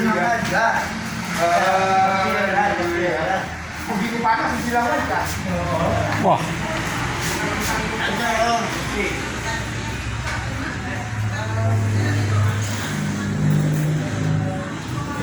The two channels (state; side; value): identical; both; correlation 1.00